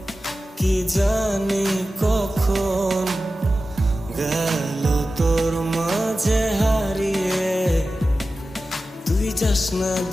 কি জানি কখন গেল তোর মাঝে হারিয়ে। তুই যাস না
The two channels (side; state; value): both; normal; correlation 0.94